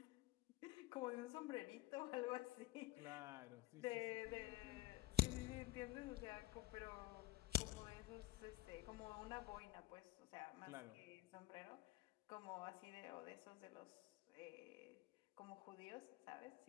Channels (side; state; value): right; quieter; 16.2 dB